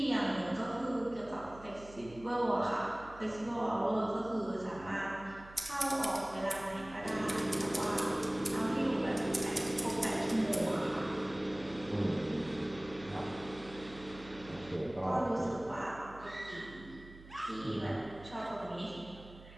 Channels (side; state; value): right; noise; hum, 18 dB below the sound